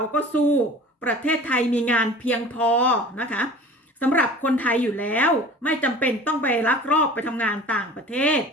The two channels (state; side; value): normal; both; correlation 0.42